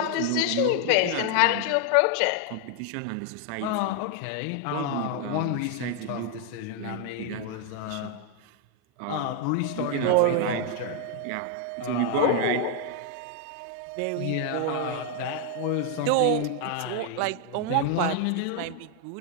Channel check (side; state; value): both; different; correlation 0.00